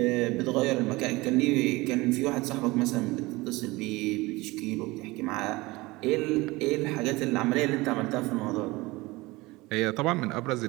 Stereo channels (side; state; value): left; quieter; 21.7 dB